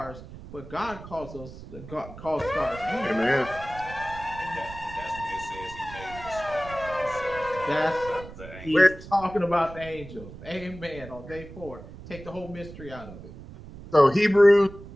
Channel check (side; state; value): right; noise; rumble, 15 dB below the sound